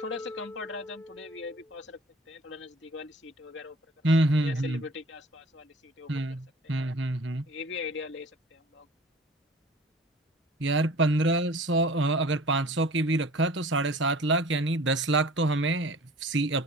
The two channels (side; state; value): both; normal; correlation 0.45